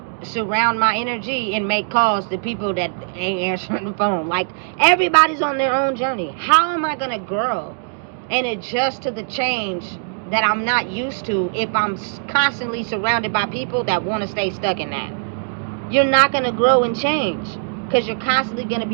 surround my energy and make calls to people that ain't answering the phone. Like, everybody's on their own journey. How am I going to grow and adjust to the change that I'm not used to if I'm constantly surrounded by people that want to stay stuck in that? You're not going to grow and change because you're constantly going to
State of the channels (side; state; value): left; silent; 65 dB below the other